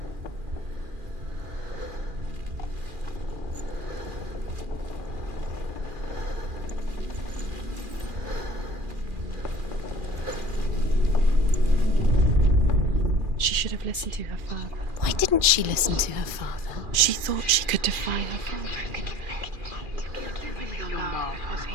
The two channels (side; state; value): left; late; 2.4 ms